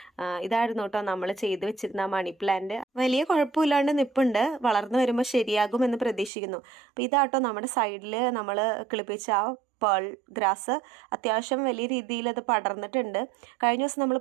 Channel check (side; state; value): left; drops out; at 6.3 s